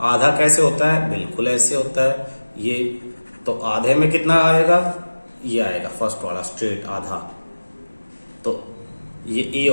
आधा कैसे होता है, बिल्कुल ऐसे होता है ये। तो आधे में कितना आएगा, ये आएगा फर्स्ट वाला स्ट्रेट आधा। तो ये ए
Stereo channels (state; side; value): inverted; both; correlation -1.00